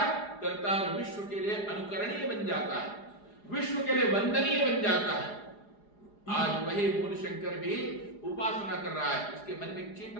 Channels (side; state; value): right; late; 4.9 ms